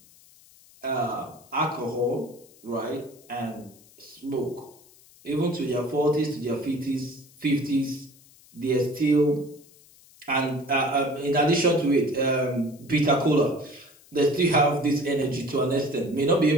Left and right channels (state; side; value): noise; left; hiss, 26 dB below the sound